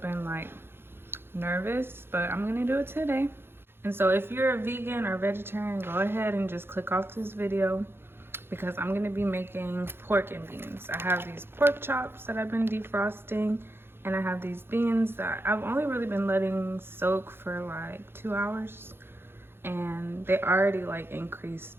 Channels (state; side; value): late; left; 0.11 ms